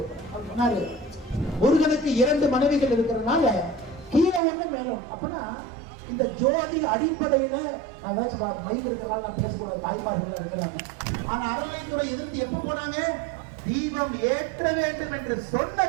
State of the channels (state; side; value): drops out; left; at 4.4 s